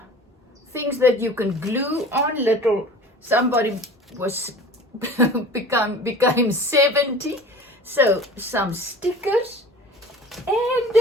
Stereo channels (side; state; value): both; normal; correlation 0.41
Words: things that you can glue on. Little, somebody was became 70, so some stickers,